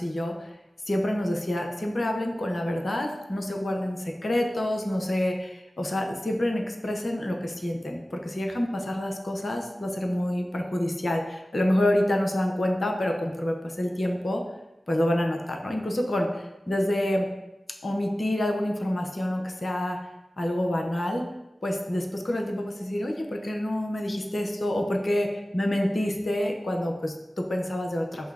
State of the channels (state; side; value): normal; both; correlation 0.96